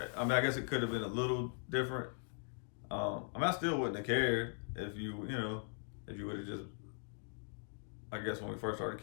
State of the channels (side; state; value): right; silent; 51 dB below the other